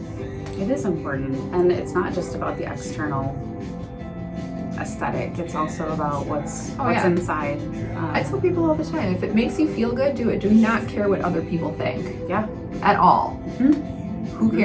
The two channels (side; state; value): both; identical; correlation 1.00